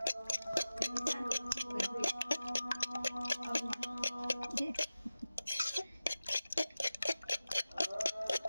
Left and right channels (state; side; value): inverted; both; correlation -0.96